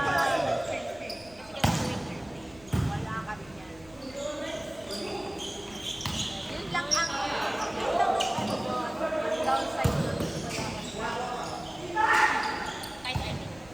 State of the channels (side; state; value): right; noise; rumble, 24 dB below the sound